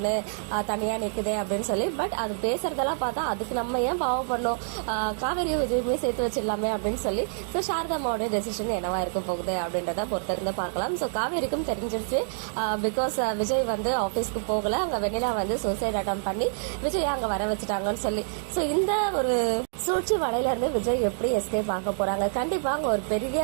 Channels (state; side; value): silent; left; digital silence